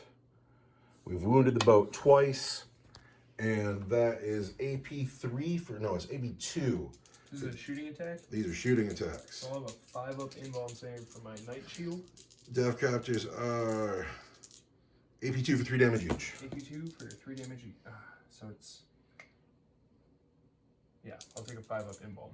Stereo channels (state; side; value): identical; both; correlation 1.00